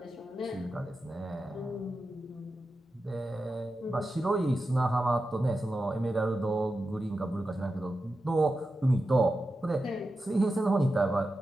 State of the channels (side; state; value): both; normal; correlation 0.91